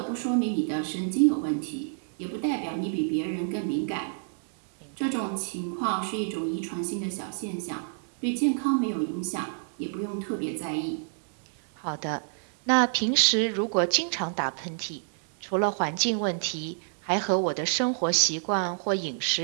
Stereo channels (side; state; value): left; silent; digital silence